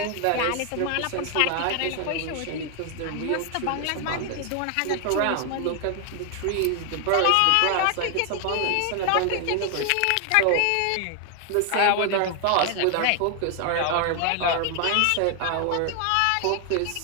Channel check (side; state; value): both; different; correlation 0.00